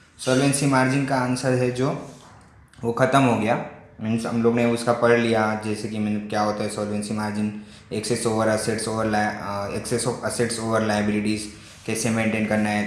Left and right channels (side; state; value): both; identical; correlation 1.00